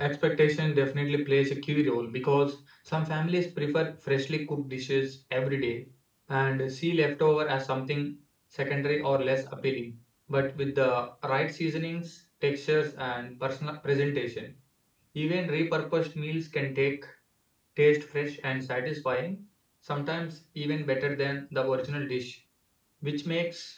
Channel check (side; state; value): both; identical; correlation 1.00